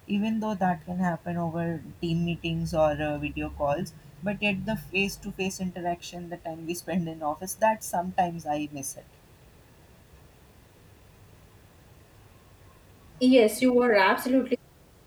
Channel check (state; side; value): identical; both; correlation 1.00